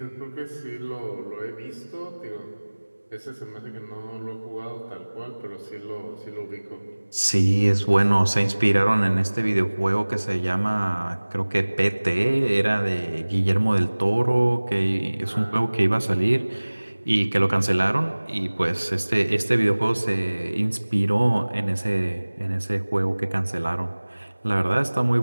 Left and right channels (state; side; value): inverted; both; correlation -1.00